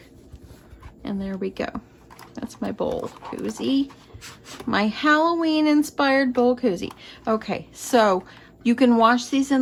And there we go. That's my bowl koozie. My Halloween inspired bowl koozie. Okay, so you can wash these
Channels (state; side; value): identical; both; correlation 1.00